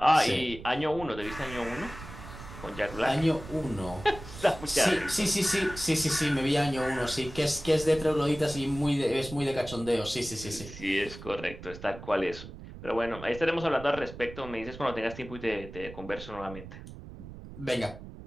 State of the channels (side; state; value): right; noise; rumble, 14 dB below the sound